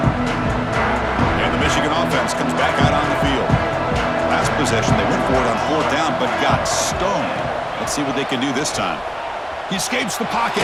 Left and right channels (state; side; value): identical; both; correlation 1.00